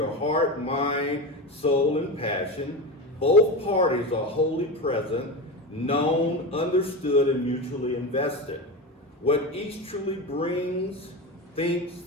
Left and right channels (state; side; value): normal; both; correlation 0.22